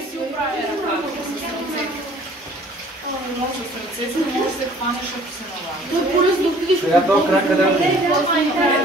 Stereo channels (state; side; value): normal; both; correlation 0.54